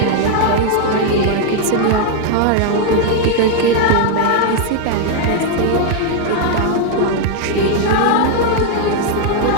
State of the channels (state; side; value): different; both; correlation 0.00